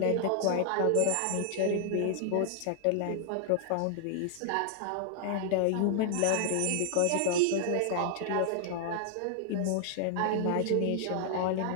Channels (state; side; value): different; both; correlation 0.00